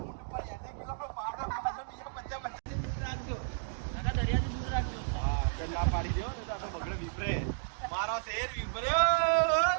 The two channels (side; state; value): left; silent; digital silence